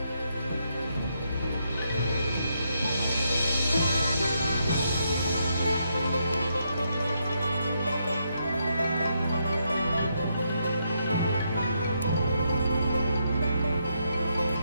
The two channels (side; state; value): both; inverted; correlation -0.78